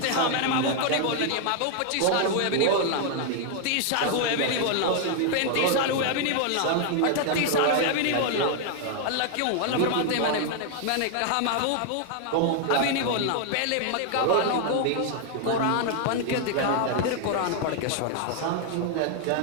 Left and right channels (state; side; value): different; both; correlation 0.00